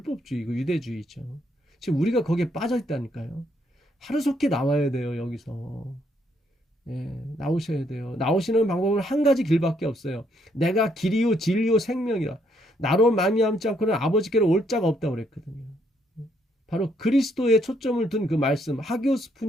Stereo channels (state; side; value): normal; both; correlation 0.72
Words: 유대주의죠. 지금 우리가 거기에 빠져 있다니까요. 하루속히 나와야 돼요. 여기서. 나오셔야 돼요. 나오시는 방법은 한 가지 길밖에 없어요. 내가 길이요 진리요 생명이라. 나로 말미암지 않고는 아버지께로 올 자가 없다고 그랬거든요. 바로 그리스도에 초점을 둔 그 말씀, 하기오스